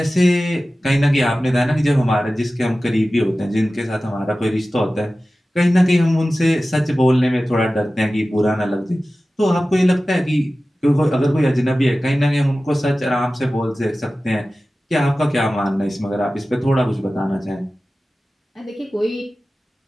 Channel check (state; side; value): normal; both; correlation 0.96